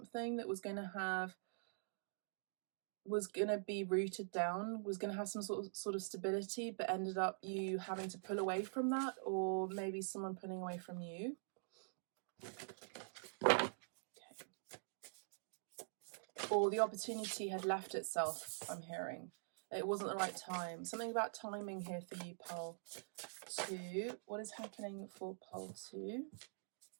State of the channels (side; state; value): left; silent; digital silence